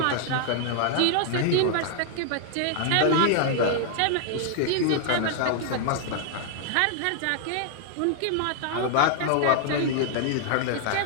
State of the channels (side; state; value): both; different; correlation 0.00